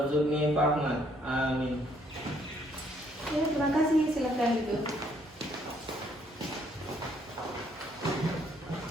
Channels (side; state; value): both; normal; correlation 0.67